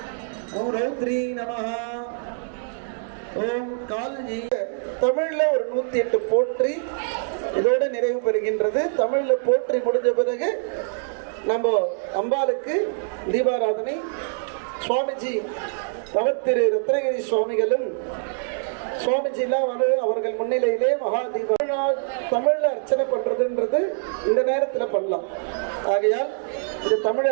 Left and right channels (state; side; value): silent; left; digital silence